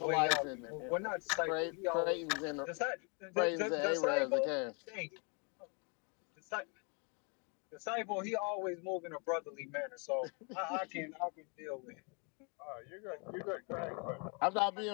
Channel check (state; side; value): quieter; right; 35.5 dB